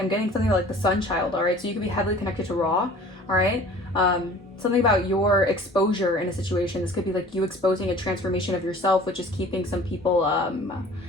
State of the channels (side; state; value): both; normal; correlation 0.47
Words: getting something like the sun child. All right, so you could be heavily connected to Ra. All right, something about your exposure in a situation. This could be like you exposing a transformation of yourself, which is keeping some people